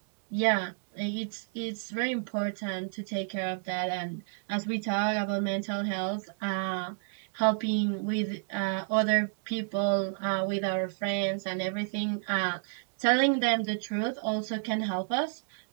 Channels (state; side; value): silent; left; digital silence